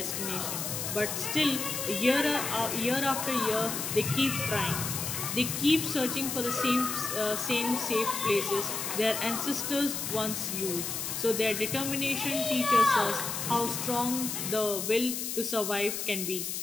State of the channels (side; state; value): left; noise; hiss, 3 dB below the sound